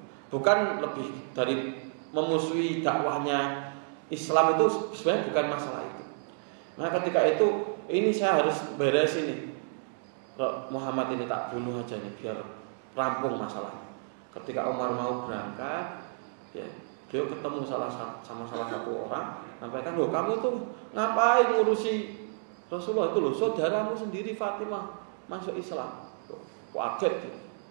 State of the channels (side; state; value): left; silent; digital silence